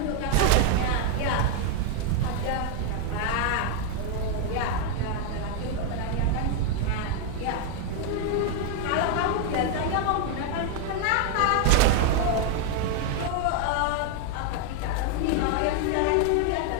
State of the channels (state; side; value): different; both; correlation 0.01